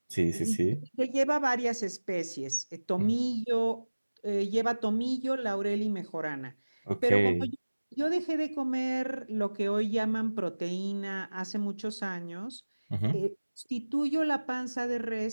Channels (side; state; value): both; inverted; correlation -1.00